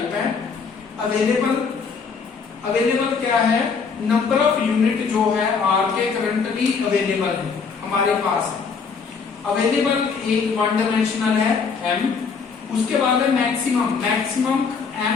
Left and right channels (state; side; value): quieter; right; 5.5 dB